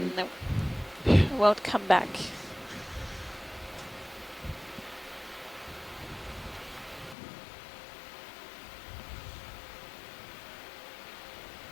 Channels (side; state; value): right; drops out; at 7.2 s